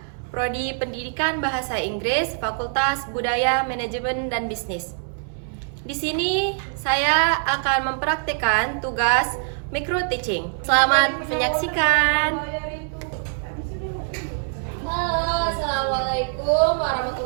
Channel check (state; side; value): silent; left; 60 dB below the other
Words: Prodi Pendidikan Bahasa Inggris, Fakultas Budaya, Manajemen dan Bisnis. Di sini saya akan mempraktikkan tugas micro teaching. Selamat menyaksikan. Halo, assalamualaikum